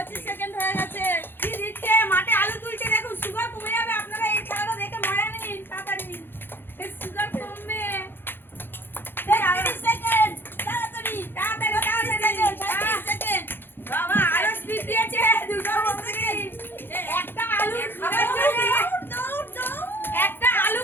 সেকেন্ড হয়ে গেছে। কি দিচ্ছে মাঠে আলু তুলছে, দেখুন সুগার কমে যাবে। আপনারা এই খেলাটা দেখে মজা নিন তাড়াতাড়ি, সুগার কমবে। 30 সেকেন্ড, তাড়াতাড়ি তাড়াতাড়ি তাড়াতাড়ি 30 সেকেন্ড। বাবা আরো স্পিড দিয়েছে, দুটো সেকেন্ড। একটা আলু খাবার জন্য একটা আলু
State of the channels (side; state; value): right; late; 0.10 ms